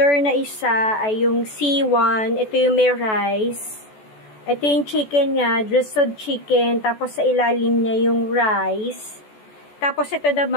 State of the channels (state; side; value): late; right; 14 ms